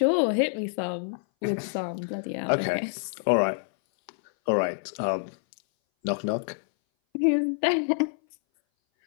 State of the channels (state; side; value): silent; right; 59 dB below the other